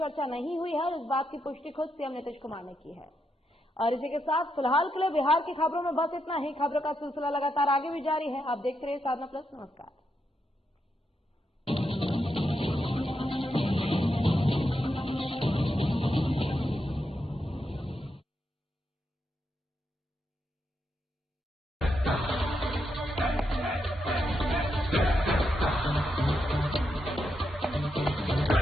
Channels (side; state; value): both; normal; correlation 0.83